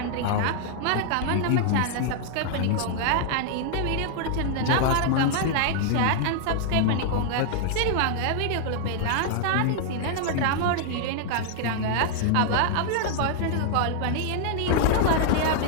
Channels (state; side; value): different; both; correlation -0.01